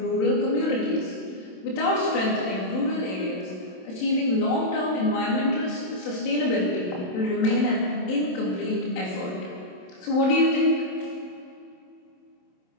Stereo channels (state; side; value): late; right; 27 ms